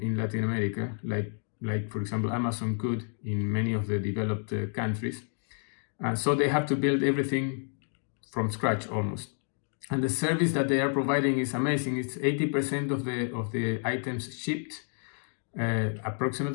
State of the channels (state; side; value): silent; right; 58 dB below the other